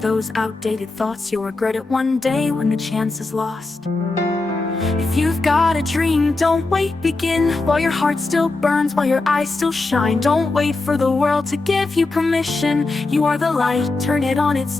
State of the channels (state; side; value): quieter; right; 3.4 dB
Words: outdated thoughts, you'll regret it one day when the chance is lost. If you've got a dream, don't wait, begin while your heart still burns, while your eyes still shine. Don't wait for the world to give you permission. You are the light, turn it on, it's